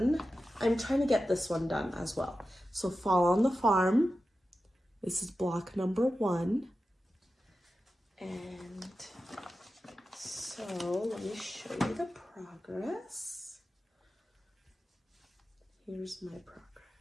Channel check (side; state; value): both; normal; correlation 0.92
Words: I'm trying to get this one done as well. So Fall on the Farm, this is block number 1. And so let me show you the progress. Here's my